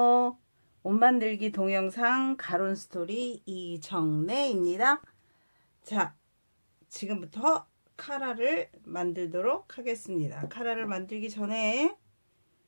옷 만들기 동영상 가론 스토리 이정래입니다. 자, 지금부터 카라를 만들도록 하겠습니다. 카라를 만들기 전에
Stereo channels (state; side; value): inverted; both; correlation -1.00